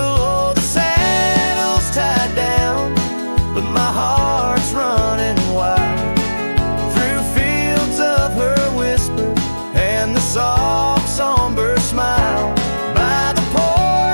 the saddle's tied down, but my heart's running wild through fields of her whisper and the soft somber smile. By the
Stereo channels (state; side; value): inverted; both; correlation -1.00